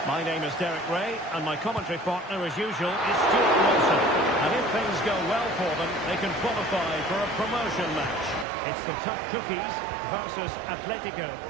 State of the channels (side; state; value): left; drops out; at 8.5 s